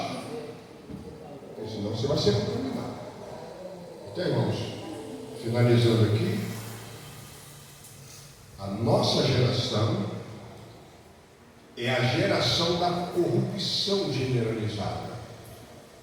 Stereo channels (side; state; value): both; identical; correlation 1.00